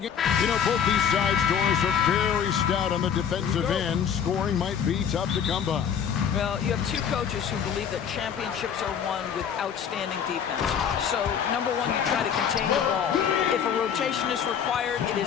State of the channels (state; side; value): quieter; right; 7.9 dB